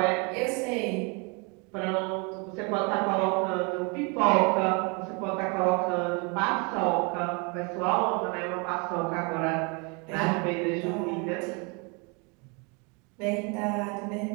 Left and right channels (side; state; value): left; quieter; 31.8 dB